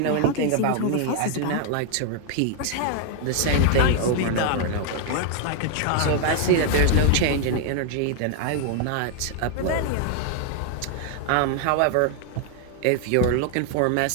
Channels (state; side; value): different; both; correlation 0.00